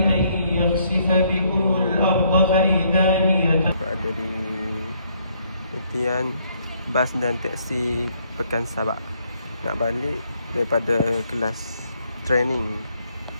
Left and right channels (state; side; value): inverted; both; correlation -0.69